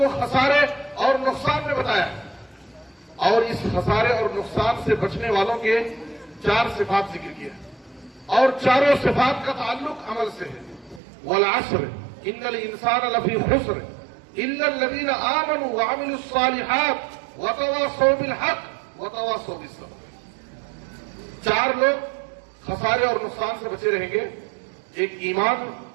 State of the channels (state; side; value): drops out; left; at 11.0 s